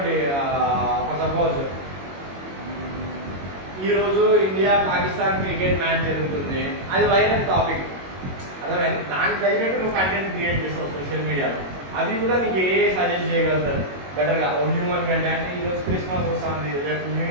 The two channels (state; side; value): late; left; 21 ms